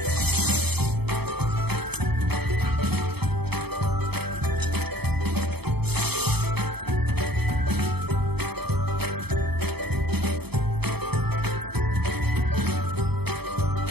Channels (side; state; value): left; late; 0.97 ms